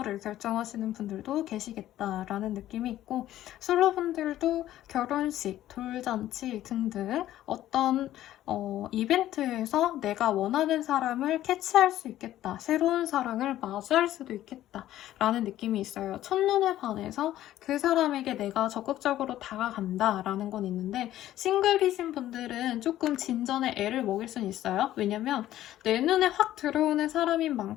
결정하시는 분들도 계시겠다라는 느낌이 있고 솔로분들도 결혼식, 돌잔치 등등 어떤 이벤트에서 내가 원하는 사람을 캐치할 수 있겠다. 새로운 사랑을 맞이할 수도 있겠다. 라는 느낌이 있어요. 첫눈에 반해서 그 사람에게 내가 적극적으로 다가간다. 라는 건 있는데 싱글이신 분들은 조금 진전에 애를 먹일 수는 있어요. 왜냐면 내 눈에 확 들어오는 사람인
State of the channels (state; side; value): quieter; right; 13.4 dB